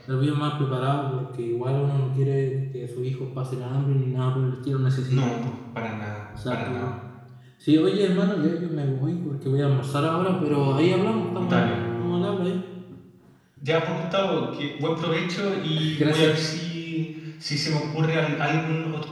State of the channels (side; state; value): both; identical; correlation 1.00